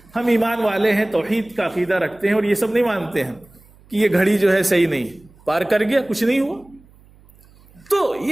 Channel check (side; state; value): right; noise; hum, 28 dB below the sound